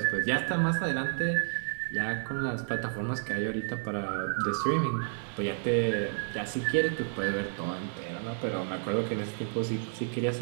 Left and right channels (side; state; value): left; silent; digital silence